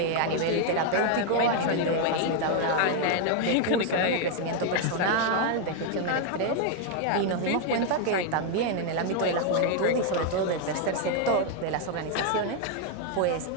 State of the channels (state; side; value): different; both; correlation 0.01